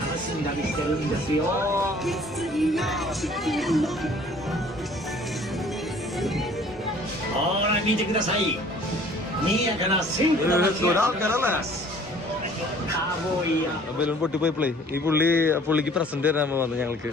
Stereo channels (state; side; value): normal; both; correlation 0.53